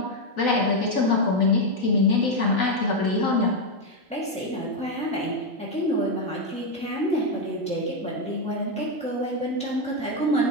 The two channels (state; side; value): normal; both; correlation 0.05